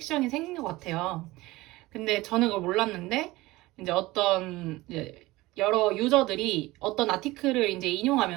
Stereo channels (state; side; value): quieter; left; 19.6 dB